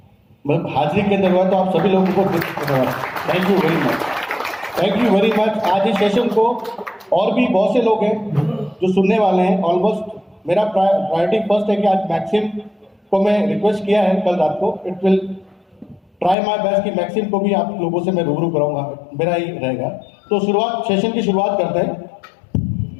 मतलब हाजिरी के अंदर हुआ। तो आप सभी लोगों को thank you very much, thank you very much. आज इस सेशन को और भी बहुत से लोग हैं जो सुनने वाले हैं। ऑलमोस्ट मेरा प्रायोरिटी फर्स्ट है कि आज मैक्सिम को मैं रिक्वेस्ट किया है कल रात को। It will try my best कि मैक्सिम को भी आप लोगों से मैं रूबरू कराऊंगा, मेरा ही रहेगा। तो शुरुआत, सेशन की शुरुआत करते हैं।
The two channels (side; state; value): right; drops out; at 16.4 s